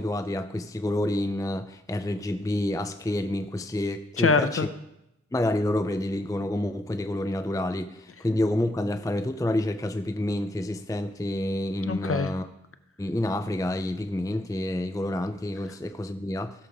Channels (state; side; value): normal; both; correlation 0.77